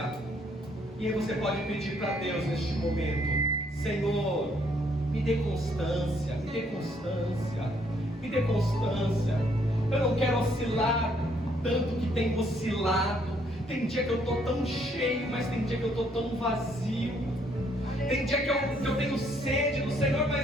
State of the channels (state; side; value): normal; both; correlation 0.68